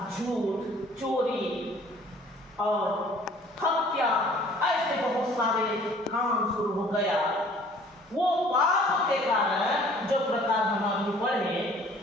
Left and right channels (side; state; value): both; normal; correlation 0.53